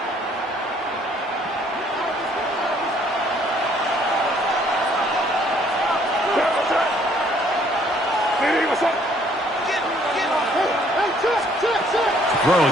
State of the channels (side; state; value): both; normal; correlation 0.62